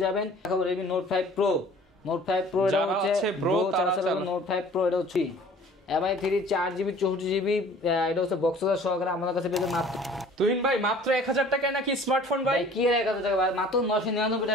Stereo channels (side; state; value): both; normal; correlation 0.50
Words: যাবেন। এখন Redmi Note 5 Pro এটা হচ্ছে Pro Note 5 Pro এটা হচ্ছে MI3 4GB 64GB। এটা হচ্ছে বক্স সহকারে আমাদের কাছে পেয়ে যাবে মাত্র তুহিন ভাই মাত্র 1000 টাকায় নাকি স্মার্টফোন ভাই? কি 1000 টাকা ভাই, মাত্র 999